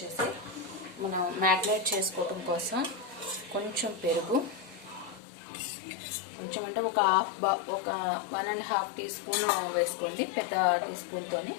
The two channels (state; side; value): drops out; right; at 5.2 s